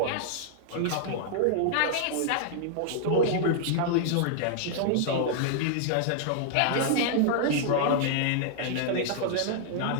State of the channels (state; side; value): different; both; correlation -0.01